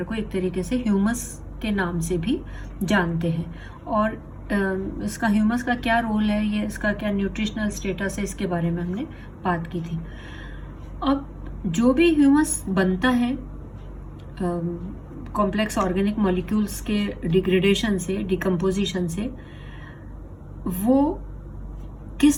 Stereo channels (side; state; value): both; identical; correlation 1.00